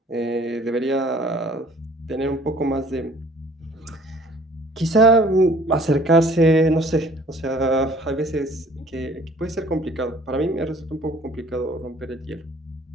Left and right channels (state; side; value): normal; both; correlation 0.54